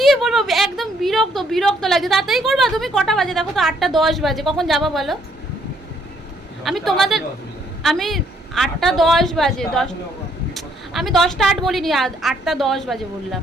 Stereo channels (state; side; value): normal; both; correlation 0.68